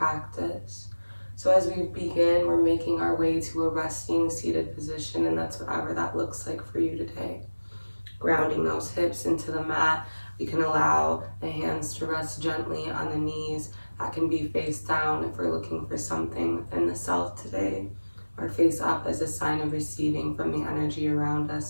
So as we begin, we're making our way to a resting seated position, and that's whatever that looks like for you today. Grounding those hips into the mat. We can allow the hands to rest gently on the knees. That can be face down if we're looking for something within the self today, or face up as a sign of receiving from the energy around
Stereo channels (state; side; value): inverted; both; correlation -1.00